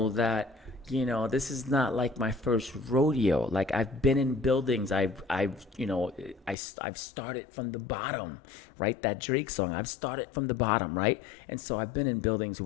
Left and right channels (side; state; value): right; drops out; at 6.6 s